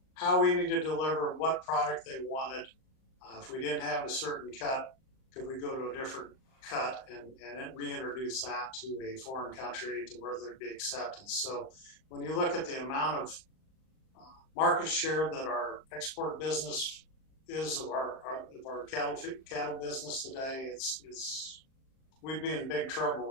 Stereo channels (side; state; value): right; late; 38 ms